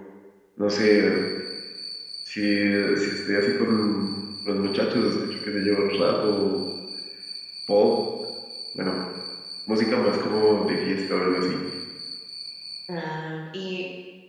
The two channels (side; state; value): both; identical; correlation 1.00